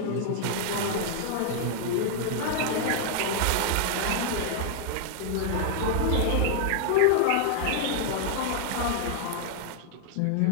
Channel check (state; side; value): different; both; correlation 0.00